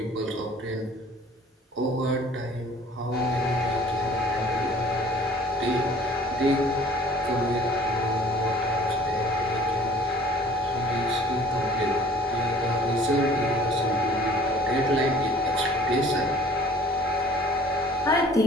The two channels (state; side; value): normal; both; correlation 0.51